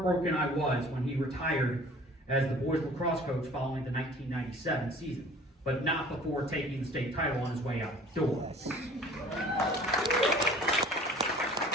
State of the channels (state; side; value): normal; both; correlation 0.49